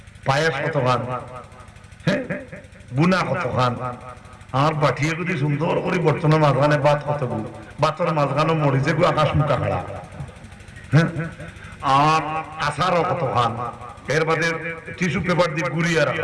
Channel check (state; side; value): identical; both; correlation 1.00